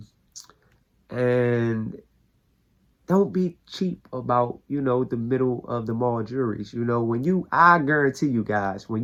and don't be cheap about, you know, the middle of the mall jewelries. You know, I guarantee you guys, when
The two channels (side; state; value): both; identical; correlation 1.00